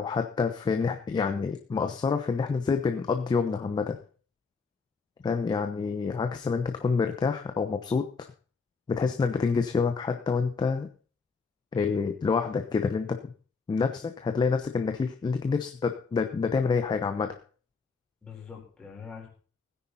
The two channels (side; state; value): right; quieter; 4.8 dB